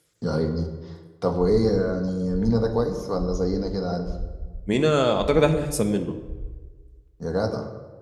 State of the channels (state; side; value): identical; both; correlation 1.00